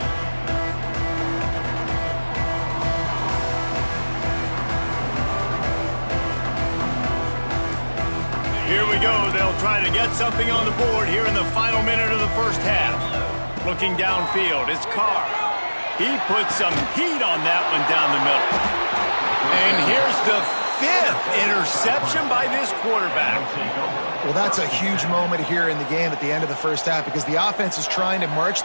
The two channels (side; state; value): both; inverted; correlation -1.00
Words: Here we go. They'll try to get something on the board here in the final minute of the first half. Looking downfield, it's Carr. He put some heat on that one down the middle. And here's the 5th interception by this quarterback. Well, that's a huge moment here in the game at the end of the first half because the offense is trying to